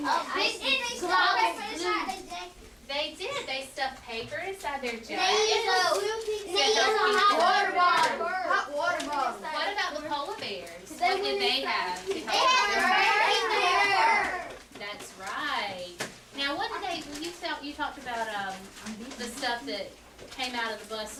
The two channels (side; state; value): both; identical; correlation 1.00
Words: the ice. They did. They stuffed paper inside their They jacket. use a hot water bottle. hot water bottle. What about the polar bears? What did they have? They have That's right. Now, what did they? You talked about the stuff that came out of the bus